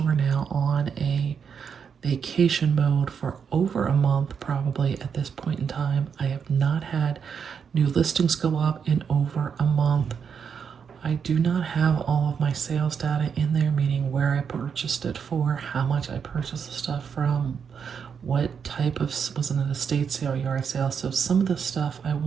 now on a vacation mode for over a month, probably at this point in time. I have not had new listings go up in over a month. I do not have all of my sales data in there, meaning where I purchased it for, how much I purchased the stuff from, what type of, was it an estate sale, yard sale. So some of the stuff I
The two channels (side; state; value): left; quieter; 6.8 dB